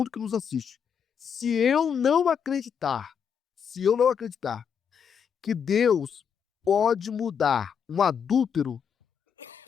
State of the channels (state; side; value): quieter; right; 7.3 dB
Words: que nos assiste. Se eu não acreditar que Deus pode mudar um adúltero,